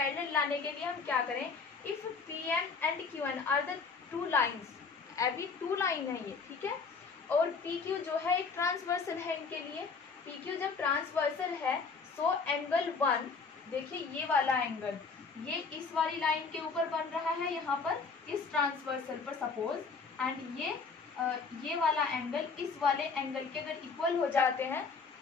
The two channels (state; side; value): quieter; right; 4.9 dB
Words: लाने के लिए हम क्या करें, if PM and QN are the two lines, अभी टू लाइन है ये, ठीक है, और PQ जो है एक ट्रांसवर्सल है इनके लिए। PQ जब ट्रांसवर्सल है सो एंगल 1, देखिए ये वाला एंगल ये इस वाली लाइन के ऊपर बन रहा है यहाँ पर इस ट्रांसवर्सल पर सपोज, एंड ये वाला एंगल इस वाले एंगल के अगर इक्वल हो जाते हैं